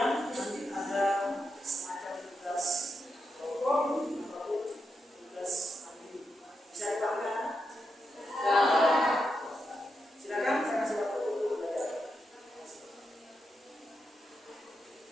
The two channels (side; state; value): both; normal; correlation 0.85